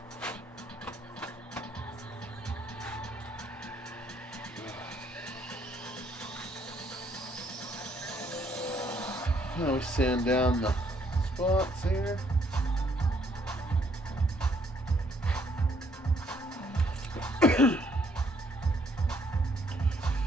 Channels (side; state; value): both; normal; correlation 0.68